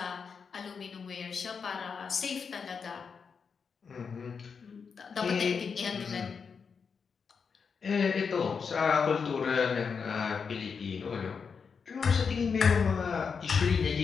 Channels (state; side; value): quieter; right; 5.8 dB